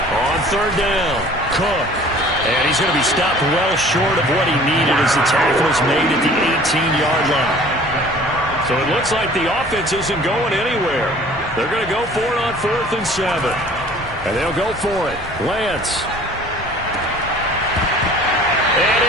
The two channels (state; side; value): normal; both; correlation 0.49